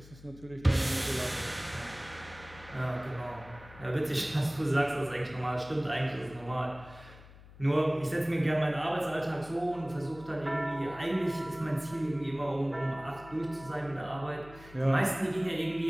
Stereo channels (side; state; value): left; noise; hum, 20 dB below the sound